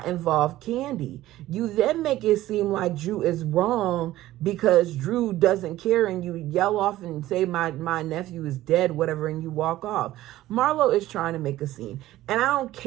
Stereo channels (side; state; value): left; quieter; 15.3 dB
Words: involve Kandi. You then make it seem like Drew is wrong because Drew doesn't care, and you yell off and say my nephew is dead, whatever, and you walk off. Marlo is trying to make a scene, and I don't